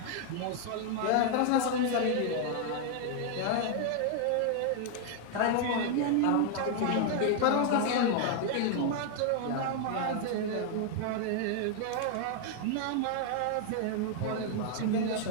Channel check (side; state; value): both; different; correlation 0.00